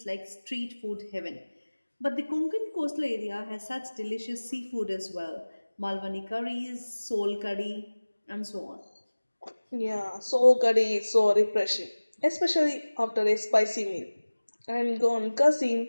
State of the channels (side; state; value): both; inverted; correlation -1.00